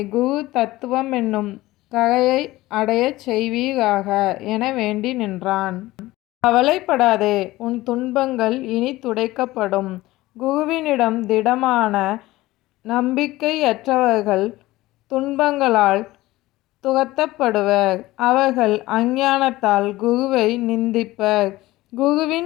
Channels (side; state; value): right; quieter; 18.0 dB